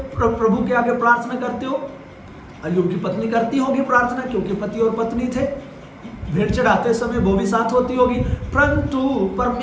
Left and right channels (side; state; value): both; identical; correlation 1.00